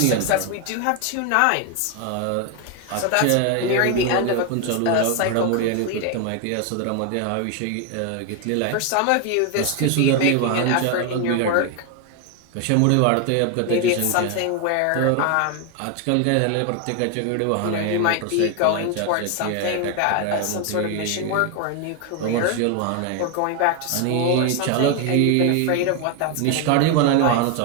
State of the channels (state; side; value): different; both; correlation 0.01